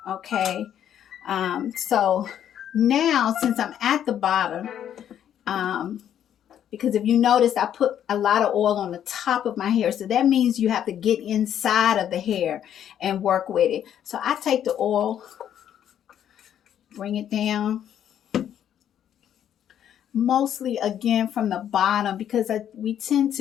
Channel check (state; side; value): quieter; right; 10.0 dB